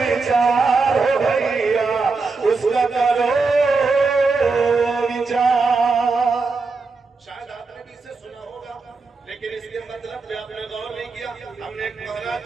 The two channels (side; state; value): left; quieter; 4.2 dB